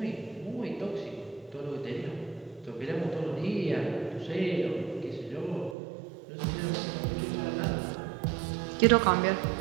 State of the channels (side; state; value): left; drops out; at 5.8 s